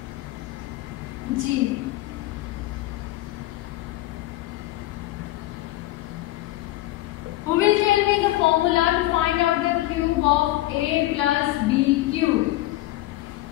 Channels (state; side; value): quieter; right; 16.7 dB